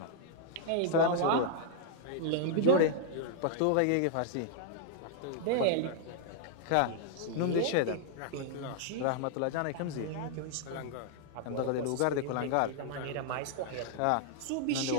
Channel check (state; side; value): different; both; correlation 0.00